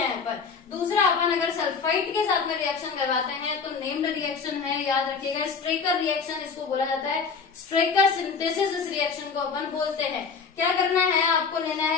पर दूसरा अपन अगर सल्फाइड के साथ में रिएक्शन करवाते हैं तो नेम्ड रिएक्शन है, याद रखिएगा स्ट्रेकर रिएक्शन इसको बोला जाता है। स्ट्रेकर सिंथेसिस इस रिएक्शन को अपन बोलते हैं। क्या करना है, आपको लेना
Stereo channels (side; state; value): right; quieter; 5.4 dB